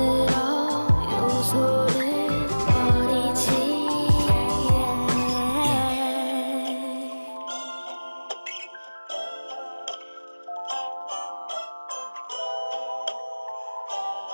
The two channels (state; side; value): inverted; both; correlation -1.00